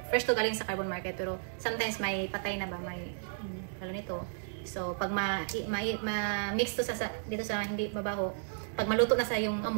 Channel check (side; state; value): left; silent; digital silence